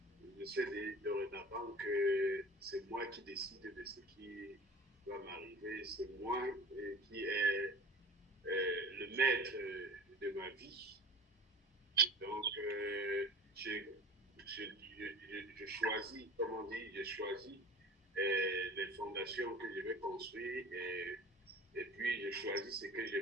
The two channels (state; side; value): normal; both; correlation 0.40